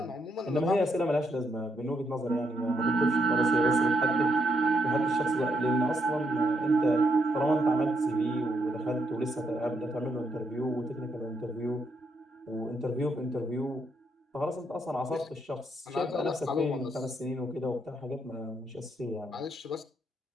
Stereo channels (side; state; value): both; normal; correlation 0.78